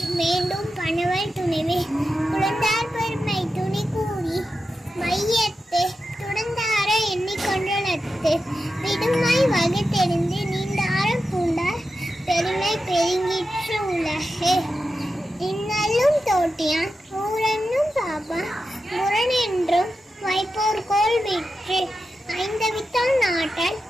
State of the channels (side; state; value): both; normal; correlation 0.90